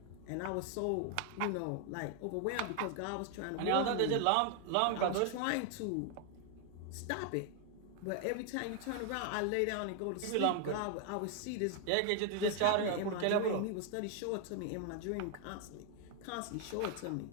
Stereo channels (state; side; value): different; both; correlation 0.00